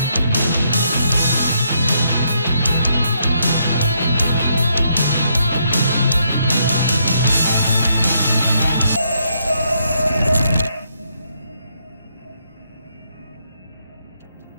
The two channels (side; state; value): both; inverted; correlation -0.75